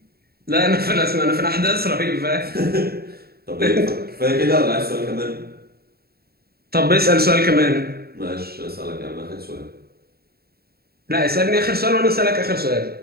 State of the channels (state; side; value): late; left; 0.45 ms